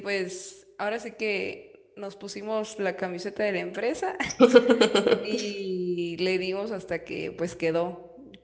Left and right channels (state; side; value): identical; both; correlation 1.00